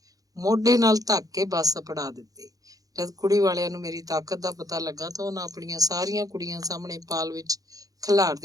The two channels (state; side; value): late; left; 0.17 ms